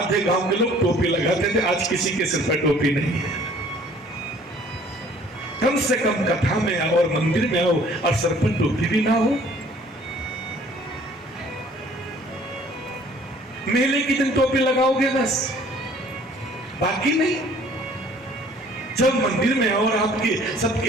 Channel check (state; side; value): normal; both; correlation 0.55